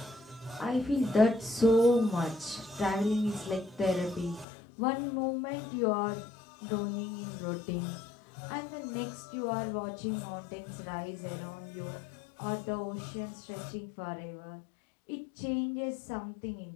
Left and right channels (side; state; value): right; drops out; at 4.5 s